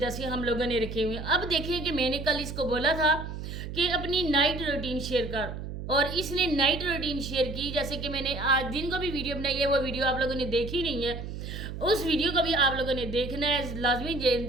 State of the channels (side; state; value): right; noise; hum, 8 dB below the sound